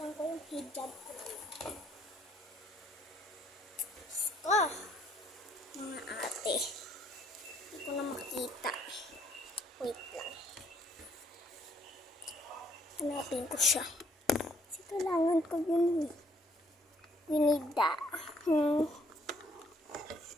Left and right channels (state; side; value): normal; both; correlation 0.66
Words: ko yung hijab ko naman. Mga ate. Hindi ko na makita. Wait lang. Hanapin ko siya. Kasi kailangan ko yun. Ginida.